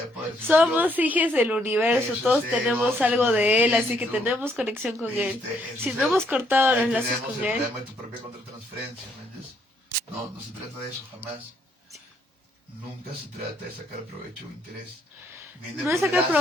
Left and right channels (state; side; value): normal; both; correlation 0.71